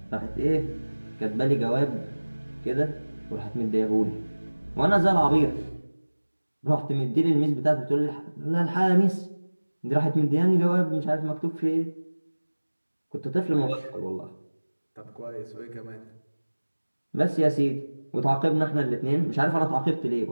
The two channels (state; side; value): inverted; both; correlation -1.00